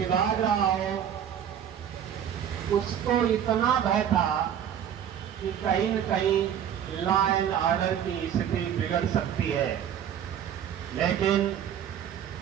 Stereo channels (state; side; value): quieter; left; 9.4 dB